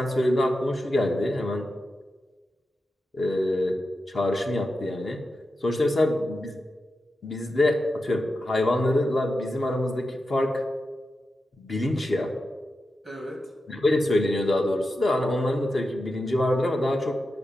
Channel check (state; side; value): normal; both; correlation 0.90